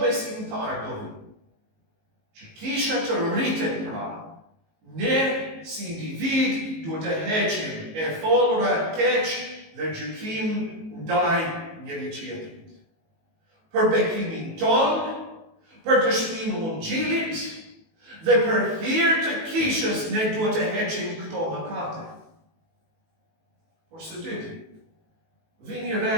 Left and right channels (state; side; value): late; left; 19 ms